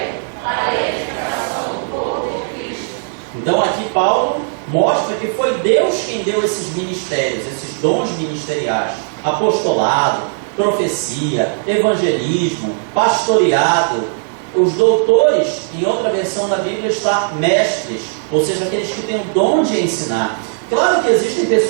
Então aqui Paulo mostra que foi Deus quem deu esses ministérios, esses dons ministeriais: apostolado, profecia, evangelismo, pastoreado. Os doutores, em outra versão da Bíblia está mestres, ou seja, aqueles que têm o dom de ensinar. Claro que existem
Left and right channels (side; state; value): left; silent; digital silence